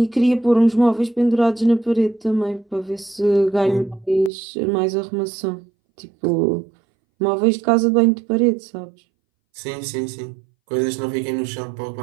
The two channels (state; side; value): drops out; left; at 4.3 s